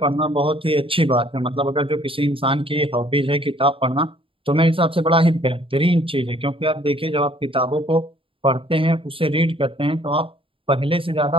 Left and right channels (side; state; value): left; late; 0.26 ms